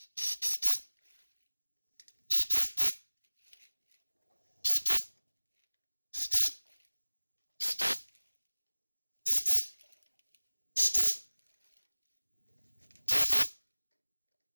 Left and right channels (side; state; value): both; inverted; correlation -1.00